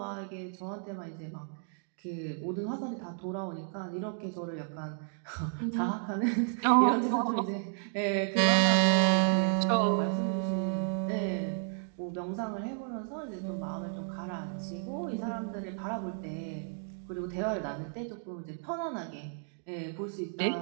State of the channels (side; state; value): left; silent; 56 dB below the other